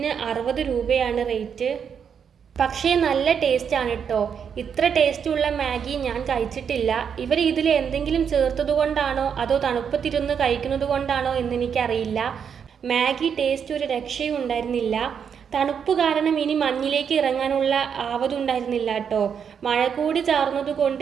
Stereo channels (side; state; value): left; quieter; 7.3 dB